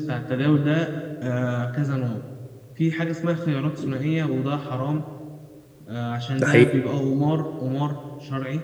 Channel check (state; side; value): identical; both; correlation 1.00